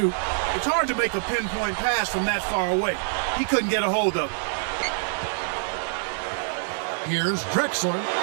It's hard to make a pinpoint pass from that far away. He couldn't get a hold of it. Here's Drexler.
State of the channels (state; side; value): silent; left; digital silence